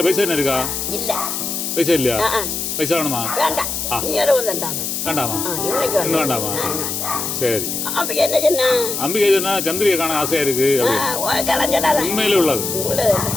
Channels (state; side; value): noise; left; hiss, 3 dB below the sound